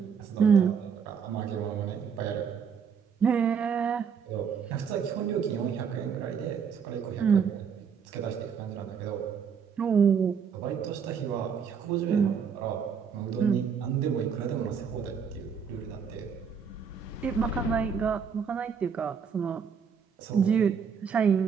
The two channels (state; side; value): quieter; left; 6.7 dB